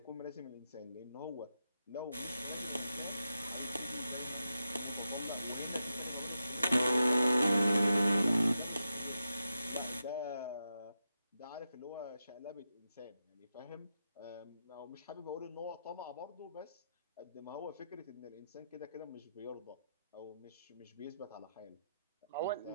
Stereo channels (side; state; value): both; inverted; correlation -0.88